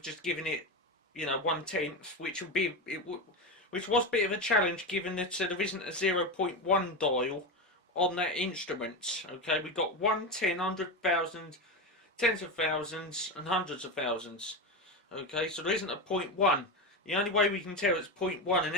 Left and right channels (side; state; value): both; normal; correlation 0.17